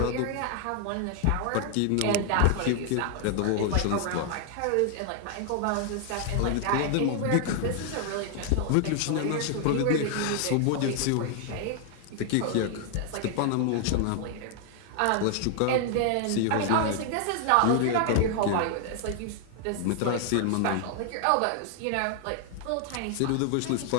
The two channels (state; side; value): different; both; correlation 0.00